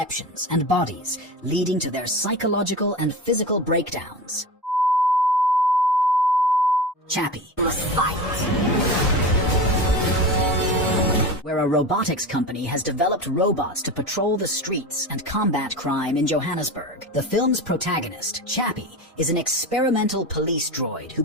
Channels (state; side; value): normal; both; correlation 0.28